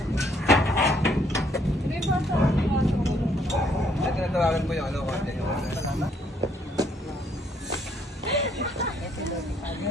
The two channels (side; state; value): both; normal; correlation 0.67